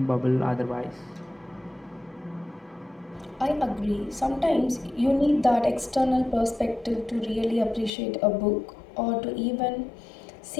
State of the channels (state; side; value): drops out; right; at 7.9 s